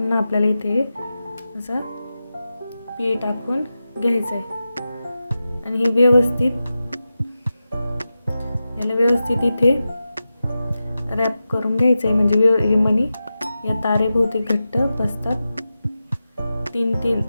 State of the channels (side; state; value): both; inverted; correlation -0.92